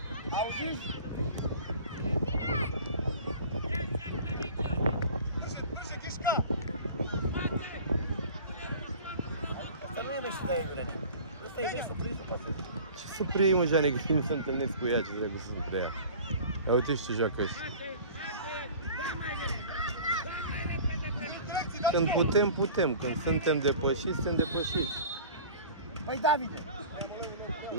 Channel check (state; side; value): inverted; both; correlation -0.43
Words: Auziți? Asta nu e mești de Ivrene. Asta e mești să prinzi să pasă. Ce să preiei, mă, Jane, că nu se întâlnesc cu ea, ce trebuie să se preia. Ia uite și ce joacă ăștia. Când putem, putem. Când suntem depășiți, suntem depășiți. Păi, Davide!